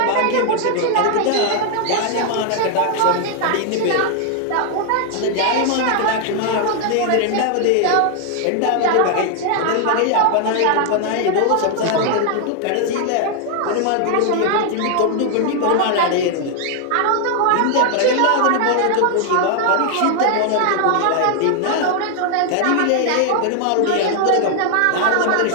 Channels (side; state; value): both; different; correlation 0.00